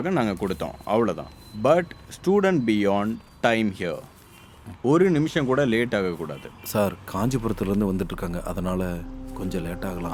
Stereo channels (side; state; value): both; identical; correlation 1.00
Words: நாங்கள் கொடுத்தோம், அவ்வளோதான். But student beyond time here. ஒரு நிமிஷம் கூட லேட் ஆகக்கூடாது. சார் காஞ்சிபுரத்துலேருந்து வந்துட்டுருக்காங்க, அதனால் கொஞ்சம் லேட் ஆகலாம்.